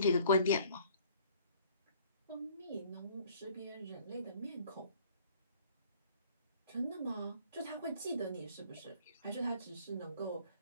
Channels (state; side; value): inverted; both; correlation -0.55